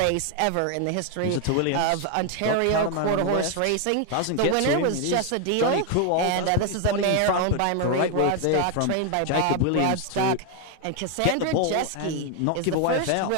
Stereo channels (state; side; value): different; both; correlation 0.01